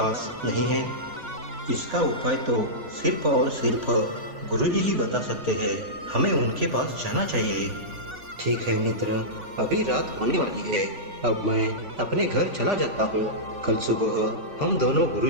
नहीं है? इसका उपाय तो सिर्फ और सिर्फ गुरुजी ही बता सकते हैं। हमें उनके पास जाना चाहिए। ठीक है मित्र, अभी रात होने वाली है। अब मैं अपने घर चला जाता हूँ। कल सुबह हम दोनों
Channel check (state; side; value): late; left; 3.5 ms